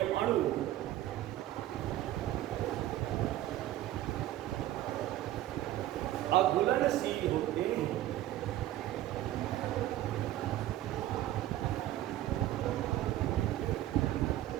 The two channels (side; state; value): left; quieter; 14.0 dB